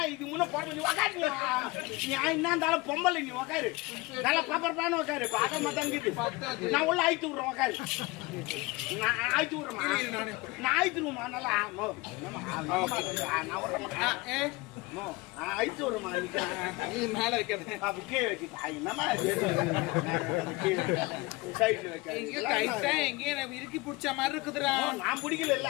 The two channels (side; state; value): right; quieter; 23.4 dB